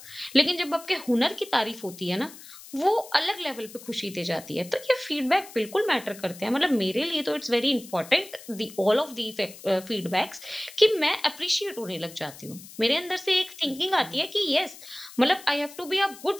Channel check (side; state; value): left; noise; hiss, 17 dB below the sound